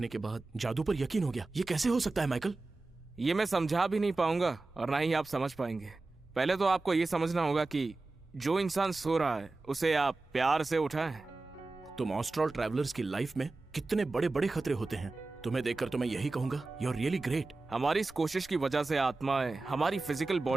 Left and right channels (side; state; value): left; quieter; 3.4 dB